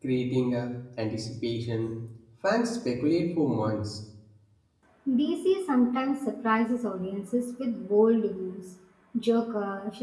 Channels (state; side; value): identical; both; correlation 1.00